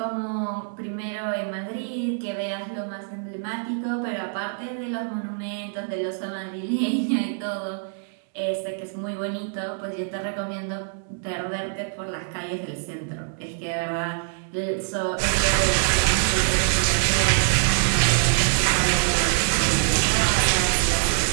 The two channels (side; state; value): left; silent; digital silence